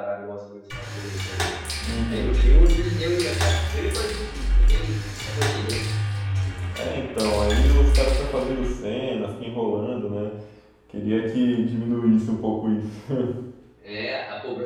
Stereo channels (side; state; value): both; identical; correlation 1.00